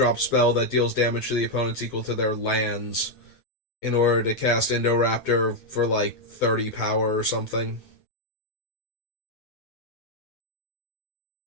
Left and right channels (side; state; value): right; late; 9.0 ms